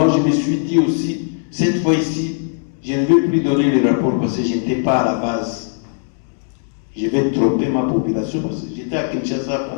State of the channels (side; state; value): right; silent; 67 dB below the other